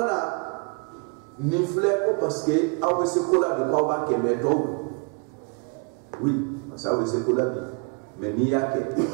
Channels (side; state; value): left; quieter; 33.5 dB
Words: ni fle ko parce que aw se kola de ko ba ke me to oui parce aw se kola bi mais ni yake